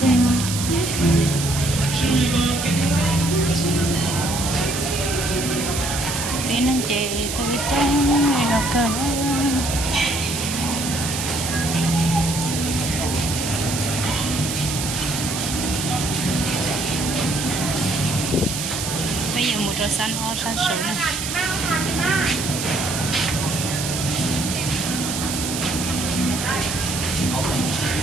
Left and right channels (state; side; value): noise; right; hiss, 4 dB below the sound